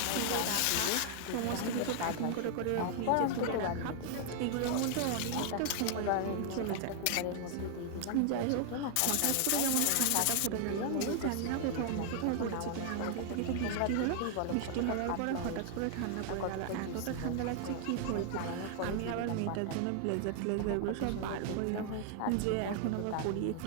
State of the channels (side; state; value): both; different; correlation 0.00